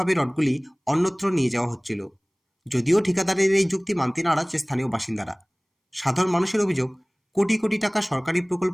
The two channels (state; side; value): identical; both; correlation 1.00